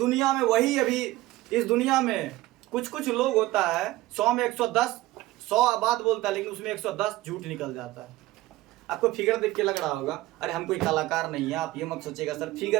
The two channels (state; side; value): quieter; left; 17.7 dB